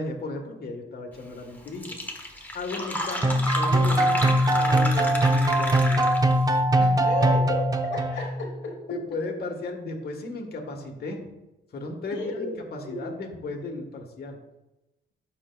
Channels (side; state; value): both; normal; correlation 0.72